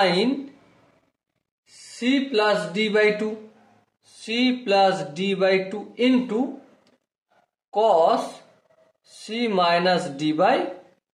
c plus d by 2 c plus d by 2 into cos C minus D by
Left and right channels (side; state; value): both; identical; correlation 1.00